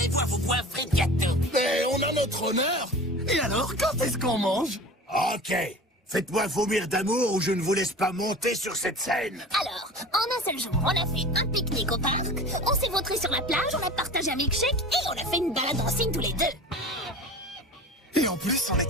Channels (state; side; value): normal; both; correlation 0.37